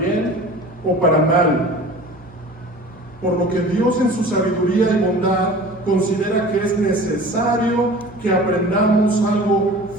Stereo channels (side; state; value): both; normal; correlation 0.41